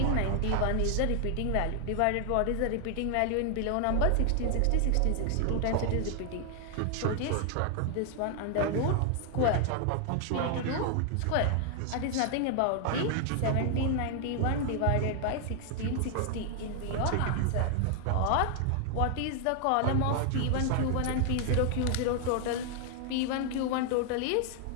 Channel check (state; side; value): different; both; correlation 0.00